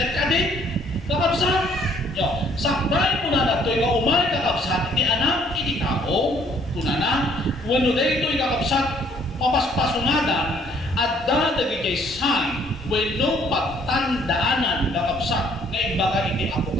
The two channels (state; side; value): normal; both; correlation 0.62